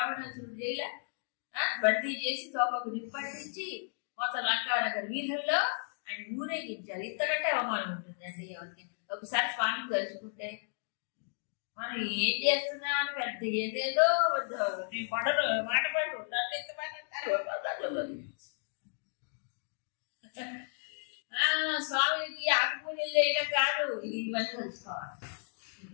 జైల బందీ చేసి తోపకు నిప్పంటించి మొత్తం లంకానగర్ వీధుల్లో ఆయన ఊరేగించారు. ఇంతకంటే అవమానం ఉంటుందండి ఎవరికి? ఒకసారి స్వామిని తలుచుకుంటే మనం ఏం చేస్తున్నామని పెద్ద ఏదేదో నీ కొండలు మాట పడు నన్ను ఎత్తమంటారు. స్వామికి ఆకుపూజలు చేయడం కాదు, ఇవన్నీ తెలుసుకోవాలి,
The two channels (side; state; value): right; silent; digital silence